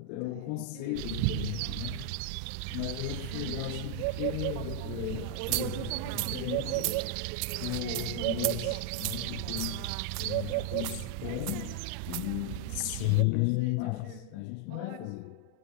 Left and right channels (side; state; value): both; different; correlation 0.00